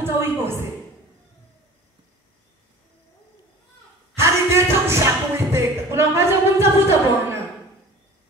uikose. Hali ndio kushaka Uwiteka. Kuna wakati wa kumtafuta Bwana.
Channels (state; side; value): normal; both; correlation 0.42